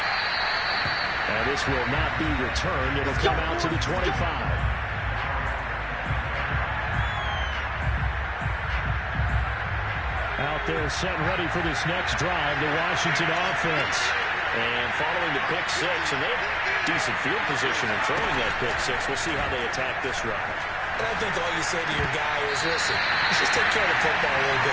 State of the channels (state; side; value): identical; both; correlation 1.00